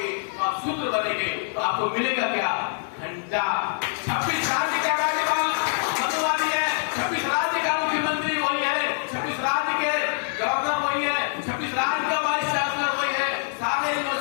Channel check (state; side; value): silent; right; digital silence